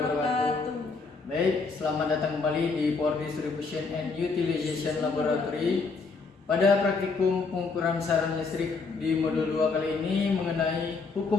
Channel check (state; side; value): quieter; right; 4.3 dB